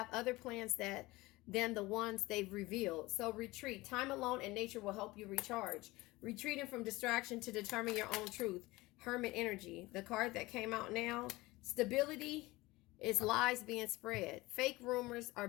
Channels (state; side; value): quieter; right; 20.5 dB